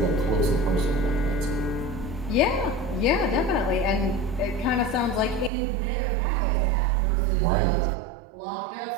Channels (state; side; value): drops out; left; at 5.5 s